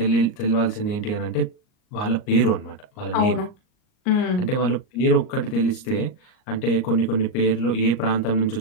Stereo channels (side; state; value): right; late; 38 ms